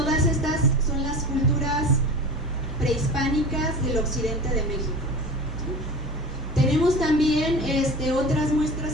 estas son las culturas prehispánicas del occidente de México. Tenemos también otras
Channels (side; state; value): both; normal; correlation 0.34